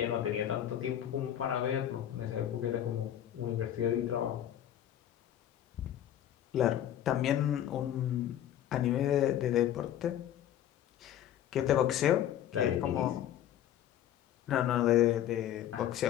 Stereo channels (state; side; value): quieter; right; 11.2 dB